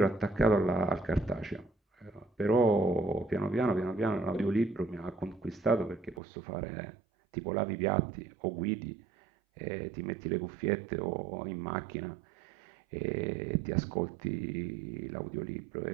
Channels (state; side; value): drops out; left; at 6.2 s